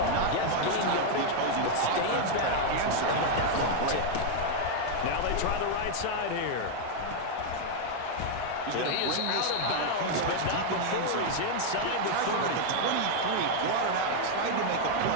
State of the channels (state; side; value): different; both; correlation 0.00